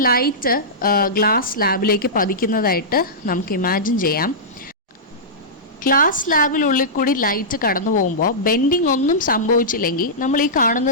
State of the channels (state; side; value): normal; both; correlation -0.14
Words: ലൈറ്റ് ഗ്ലാസ് സ്ലാബിലേക്ക് പതിക്കുന്നതായിട്ട് നമുക്ക് ഇമാജിൻ ചെയ്യാം. ഗ്ലാസ് സ്ലാബിനുള്ളിൽ കൂടി ലൈറ്റ് കടന്നു പോകുമ്പോൾ ബെൻഡിങ് ഒന്നും സംഭവിച്ചില്ലെങ്കിൽ നമ്മൾ ഈ